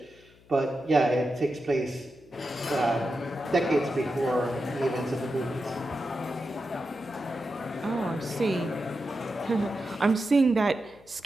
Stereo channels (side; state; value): left; noise; hum, 27 dB below the sound